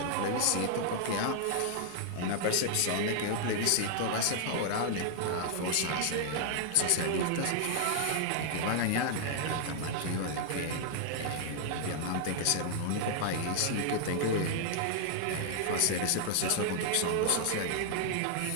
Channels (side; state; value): both; different; correlation -0.01